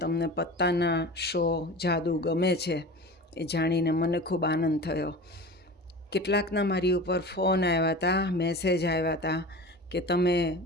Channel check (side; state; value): both; normal; correlation 0.34